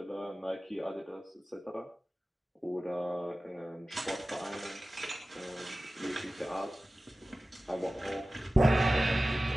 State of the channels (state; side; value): normal; both; correlation 0.96